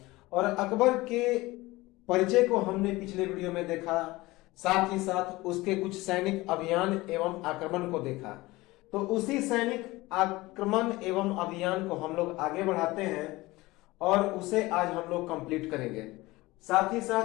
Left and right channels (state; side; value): quieter; right; 20.2 dB